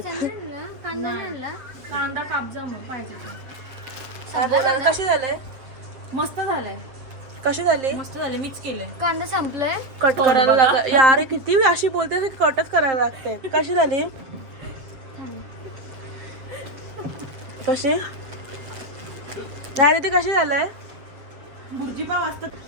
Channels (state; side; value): late; left; 7.6 ms